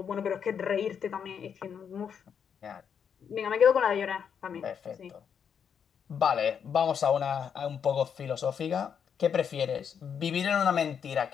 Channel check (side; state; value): right; quieter; 7.4 dB